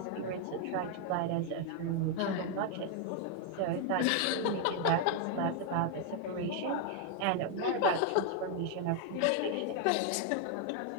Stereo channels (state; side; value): different; both; correlation 0.00